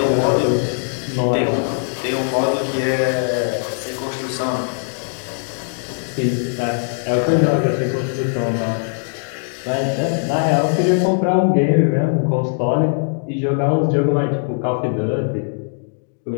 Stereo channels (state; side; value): silent; right; digital silence